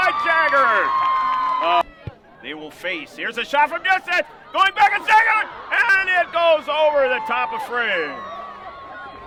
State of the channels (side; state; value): both; identical; correlation 1.00